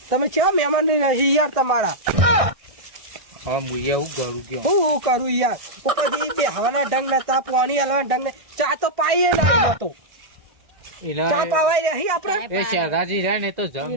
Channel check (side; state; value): left; late; 1.6 ms